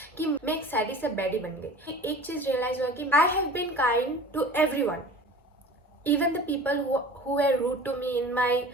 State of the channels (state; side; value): normal; both; correlation 0.41